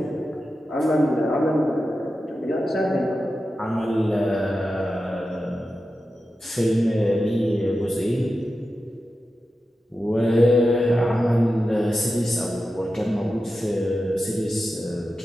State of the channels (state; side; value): normal; both; correlation 0.92